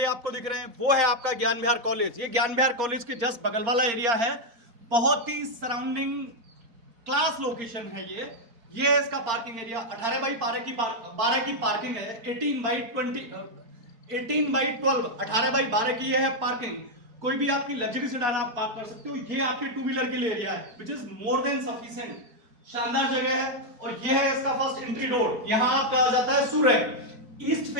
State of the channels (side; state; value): left; late; 4.3 ms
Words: आपको दिख रहे हैं वो है आपका ज्ञान विहार कॉलेज। ये ज्ञान विहार कॉलेज के जस्ट बगल वाला एरिया है। बहुत ही सराउंडिंग क्लास लोकेशन है ये है इसका पार्किंग एरिया। 18 बाई 12 की पार्किंग है। 18 बाई 12 18 बाई 12 की ये है पार्किंग। कोई भी आपकी लग्जरी सेडान आप पार्क कर सकते हो। ये आपके टू व्हीलर के लिए एरिया है which is more than sufficient. शानदार जगह है। और ये है इसका फर्स्ट एंट्री डोर। यहां आपका आ जाता है सूरज। ईस्ट